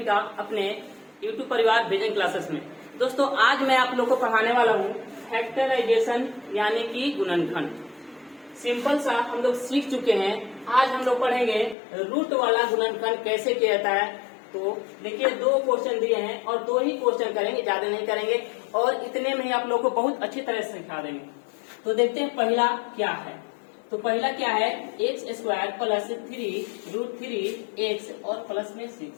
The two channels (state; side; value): drops out; right; at 11.8 s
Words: का अपने YouTube परिवार विजन क्लासेस में। दोस्तों आज मैं आप लोग को पढ़ाने वाला हूँ फैक्टराइजेशन यानी कि गुणनखंड। सिंपल सा हम लोग सीख चुके हैं। आज हम लोग पढ़ेंगे रूट वाला गुणनखंड कैसे किया जाता है। तो देखिए दो क्वेश्चन दिए हैं और दो ही क्वेश्चन करेंगे, ज्यादा नहीं करेंगे और इतने में ही आप लोग को बहुत अच्छी तरह से सिखा देंगे। तो देखते हैं पहला क्या है। तो पहला क्या है, एक्स स्क्वायर प्लस 3√3x और प्लस में 6।